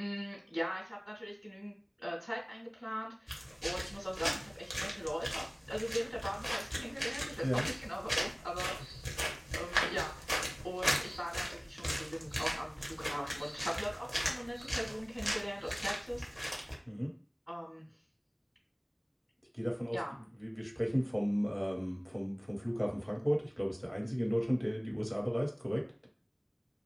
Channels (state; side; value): identical; both; correlation 1.00